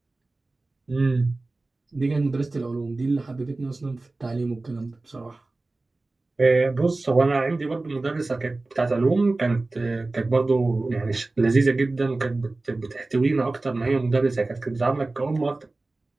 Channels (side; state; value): left; quieter; 3.2 dB